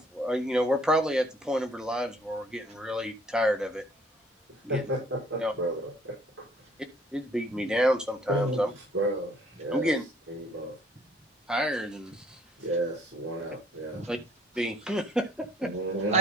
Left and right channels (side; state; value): both; normal; correlation 0.61